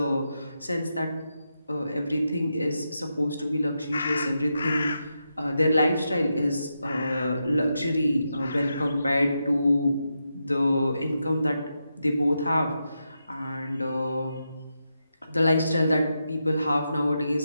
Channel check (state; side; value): inverted; both; correlation -0.86